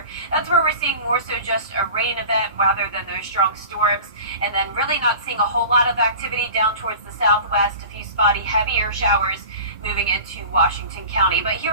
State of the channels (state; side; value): inverted; both; correlation -0.38